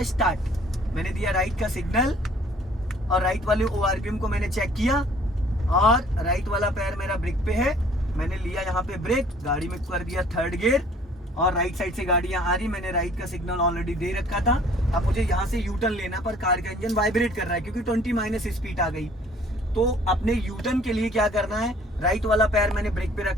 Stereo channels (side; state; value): both; normal; correlation 0.56